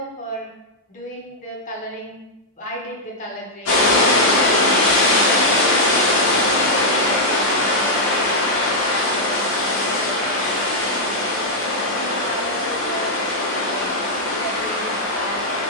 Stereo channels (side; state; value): both; normal; correlation -0.05